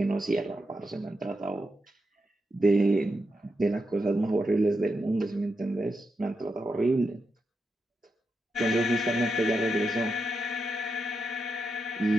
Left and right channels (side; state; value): both; normal; correlation 0.86